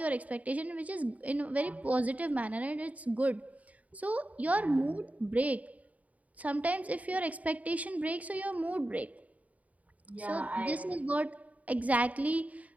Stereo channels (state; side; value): late; left; 0.070 ms